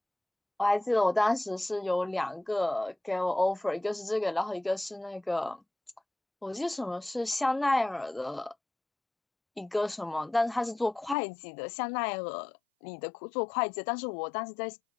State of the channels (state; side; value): drops out; right; at 11.2 s